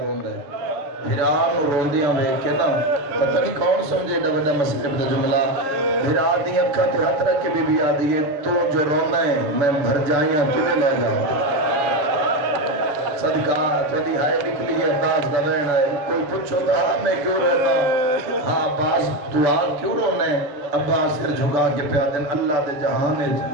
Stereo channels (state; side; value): late; left; 6.8 ms